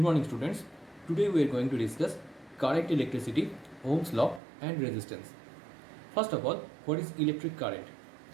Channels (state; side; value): drops out; left; at 4.4 s